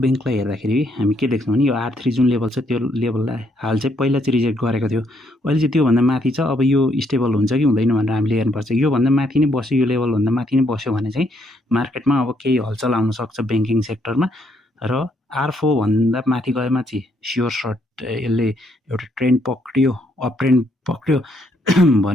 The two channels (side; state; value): both; normal; correlation 0.72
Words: हेर्दाखेरि हामी के देख्छौँ भने यो R3 जुन लेभल छ त्यो लेभललाई हाल चाहिँ पहिला चाहिँ रिजेक्ट गरेको थियो, अहिले चाहिँ त्योभन्दा माथि छ। अब यो स्टेबल हुन्छ कि हुँदैन भनेर हामीले हेर्नुपर्छ। योभन्दा माथि नै बस्यो, यो लेभलभन्दा माथि नै बस्यो भने चाहिँ मार्केटमा अब केही हलचल आउन सक्छ ब्याङ्किङ सेक्टरमा र R4 भन्दा माथि गएमा चाहिँ स्योर सर्ट यसले एउटा ट्रेन्ड पक्रियो, अप ट्रेन्ड पक्रियो